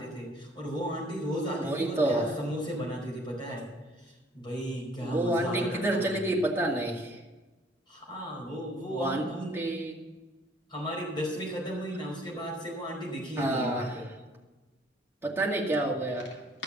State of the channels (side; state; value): both; normal; correlation 0.58